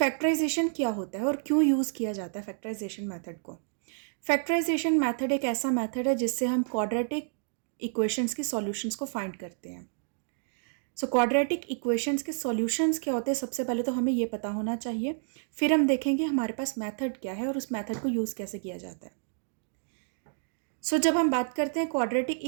क्या होता है और क्यों यूज़ किया जाता है फैक्टराइजेशन मेथड को। फैक्टराइजेशन मेथड एक ऐसा मेथड है जिससे हम क्वाड्रेटिक इक्वेशंस की सॉल्यूशंस को फाइंड करते हैं। सो क्वाड्रेटिक इक्वेशंस के सॉल्यूशंस क्या होते हैं, सबसे पहले तो हमें ये पता होना चाहिए, फिर हम देखेंगे हमारे पास मेथड क्या है और उस मेथड को यूज़ कैसे किया जाता है। सो जब हम बात करते हैं क्वाड्रेटिक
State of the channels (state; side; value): silent; left; digital silence